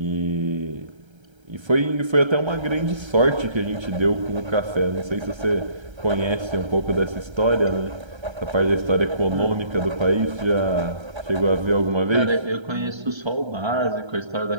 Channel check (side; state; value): left; late; 1.3 ms